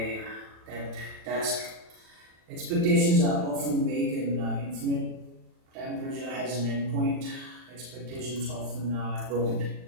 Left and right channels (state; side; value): late; left; 39 ms